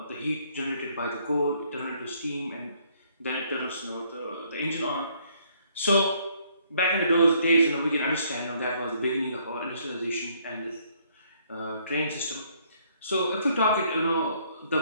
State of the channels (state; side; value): inverted; both; correlation -0.66